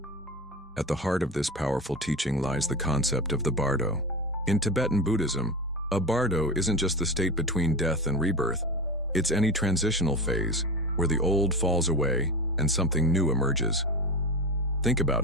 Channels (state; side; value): normal; both; correlation 0.25